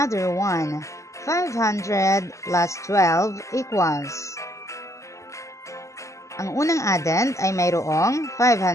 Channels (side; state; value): right; late; 0.15 ms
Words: one. 500 plus 12 equals. Ang unang addend ay mayroong